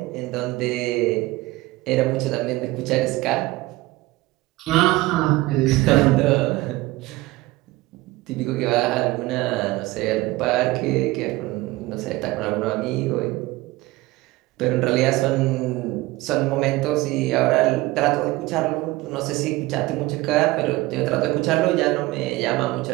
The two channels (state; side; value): quieter; left; 19.6 dB